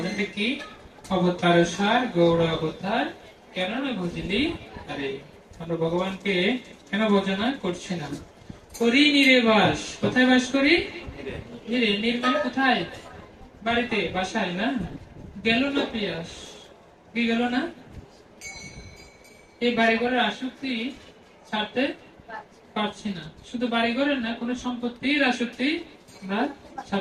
কি? অবতার সার গৌর অবতার কেন না বুঝলি। আরে আমরা ভগবানকে কেন ভজনা করছি না? করি নিরে বাস। কোথায় বাস করি? নিরে। নির্মাণ কোথায়? বাড়িতে, বাসায় না? গেল না পিয়াস? কি গেল না? এই বাড়িঘরের আসক্তি ছাড়তে পারছি না। শুধু বাড়িঘরের না, কোন সম্পত্তির আসক্তি আমরা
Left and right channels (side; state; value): both; identical; correlation 1.00